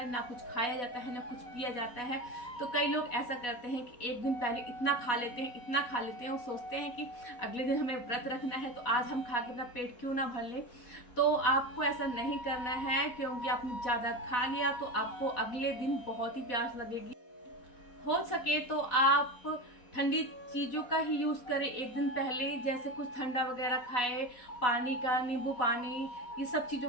ना कुछ खाया जाता है ना कुछ पिया जाता है। तो कई लोग ऐसा करते हैं कि एक दिन पहले इतना खा लेते हैं और सोचते हैं कि अगले दिन हमें व्रत रखना है तो आज हम खा के अपना पेट क्यों ना भर ले। तो आपको ऐसा नहीं करना है, क्योंकि आपने ज़्यादा खा लिया तो आपको अगले दिन बहुत ही प्यास लगेगी। हो सके तो आप ठंडी चीज़ों का ही यूज़ करें एक दिन पहले, जैसे कुछ ठंडा वगैरह खाए, पानी का, नींबू पानी, ये सब चीज़ों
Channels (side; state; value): right; late; 4.1 ms